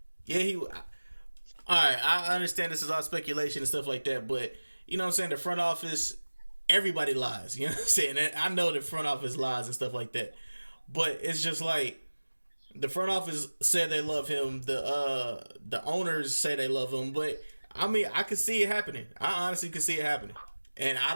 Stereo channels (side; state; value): both; inverted; correlation -1.00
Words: Yeah, all right, I understand this is all speculation and stuff like that, but you know what I'm saying? The front office, everybody lies. You know what I'm saying? And I know the front office lies and stuff like that, but it's just like, the front office said they love him. The owners say they love him, but I can see it happening. I honestly can see it happening, and I